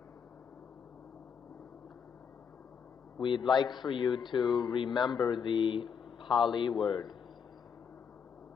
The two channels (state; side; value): quieter; right; 6.8 dB